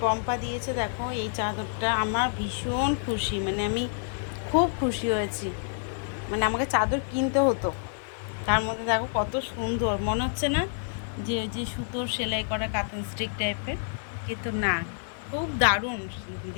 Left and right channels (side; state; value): right; silent; digital silence